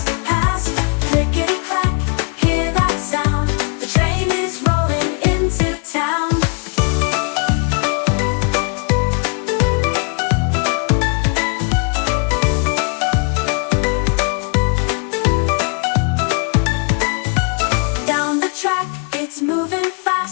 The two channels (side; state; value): right; quieter; 38.0 dB